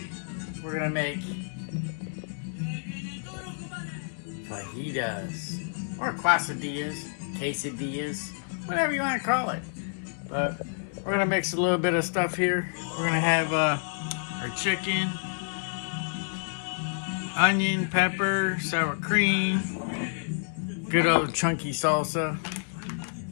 we're gonna make fajitas, or quesadillas, quesadillas, whatever you want to call it. But we're gonna mix a little bit of stuff here. We're gonna have our chicken, onion, pepper, sour cream, good old chunky salsa,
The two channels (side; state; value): right; silent; digital silence